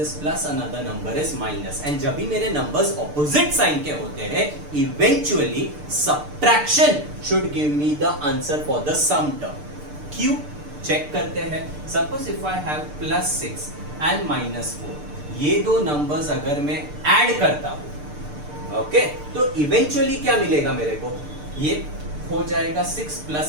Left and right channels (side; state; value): left; late; 6.7 ms